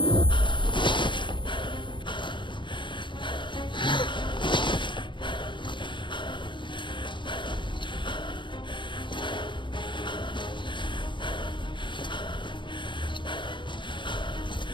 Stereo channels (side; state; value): right; late; 0.23 ms